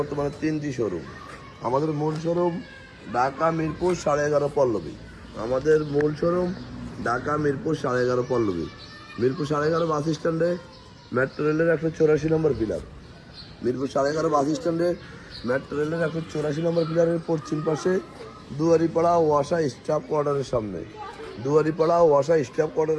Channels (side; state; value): both; identical; correlation 1.00